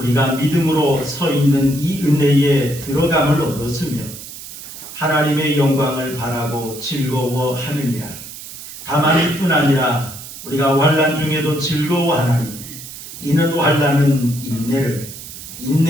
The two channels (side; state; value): right; noise; hiss, 13 dB below the sound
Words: 믿음으로 서 있는 이 은혜에 들어감을 얻었으며 하나님의 영광을 바라고 즐거워하느니라. 다만 이뿐 아니라 우리가 환난 중에도 즐거워하나니 이는 환난은 인내를,